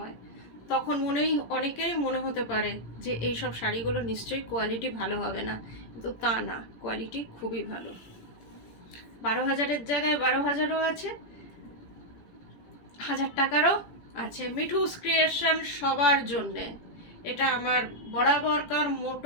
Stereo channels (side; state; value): right; late; 17 ms